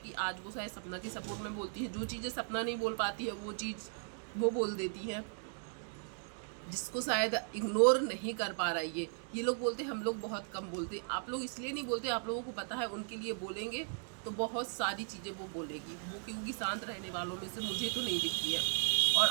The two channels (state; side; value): silent; left; 53 dB below the other